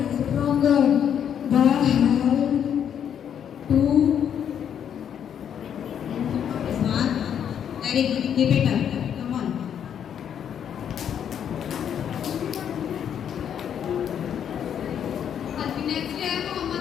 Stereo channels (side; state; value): right; quieter; 8.8 dB